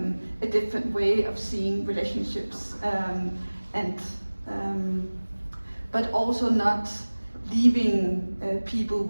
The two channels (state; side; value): inverted; both; correlation -1.00